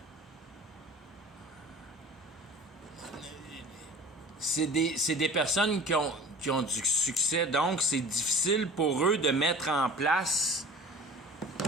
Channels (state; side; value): normal; both; correlation 0.42